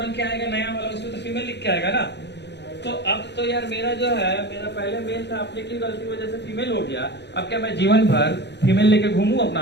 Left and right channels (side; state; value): right; late; 0.50 ms